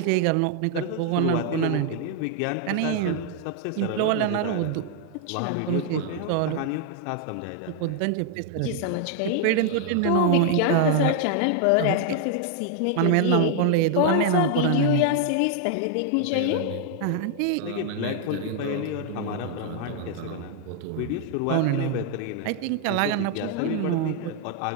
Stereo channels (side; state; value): both; different; correlation 0.00